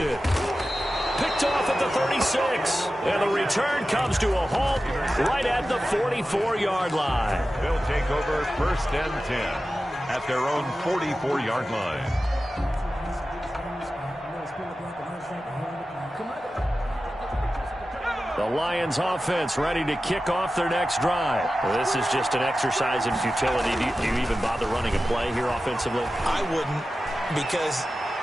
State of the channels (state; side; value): normal; both; correlation 0.94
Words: Picked off at the 36. And the return comes to a halt right at the 44-yard line. They'll take over 1st and 10 at their own 44-yard line. The Lions offense ready to kick off their next drive. Well, this is just an exercise in futility. Do you even bother running a play here offensively? I wouldn't, because